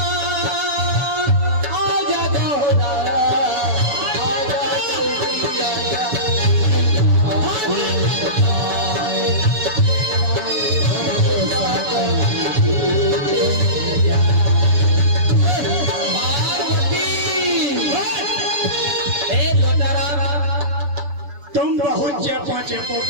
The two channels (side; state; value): left; late; 6.9 ms